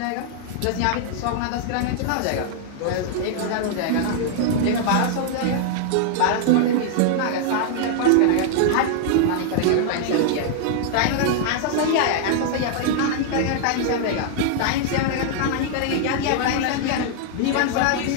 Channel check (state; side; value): different; both; correlation 0.00